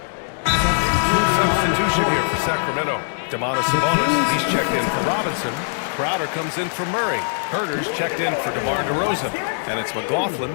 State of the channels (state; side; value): silent; right; digital silence